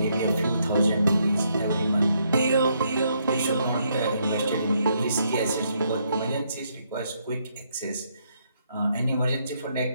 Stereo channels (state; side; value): inverted; both; correlation -0.74